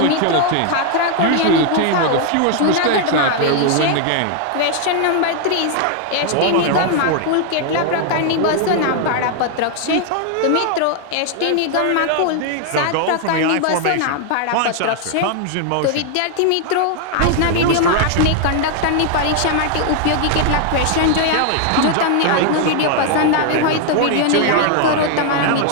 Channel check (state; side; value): different; both; correlation 0.00